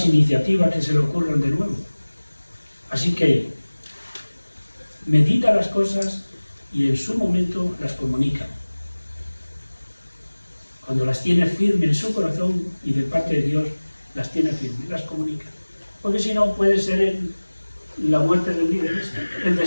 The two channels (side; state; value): both; inverted; correlation -1.00